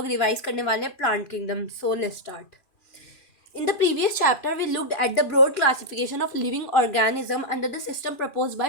रिवाइज करने वाले हैं plant kingdom. So let's start. In the previous chapter, we looked at the broad classification of living organism under the system proposed by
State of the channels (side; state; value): right; late; 3.0 ms